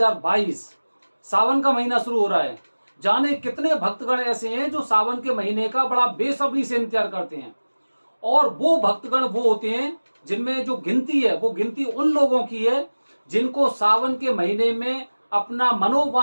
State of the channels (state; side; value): inverted; both; correlation -1.00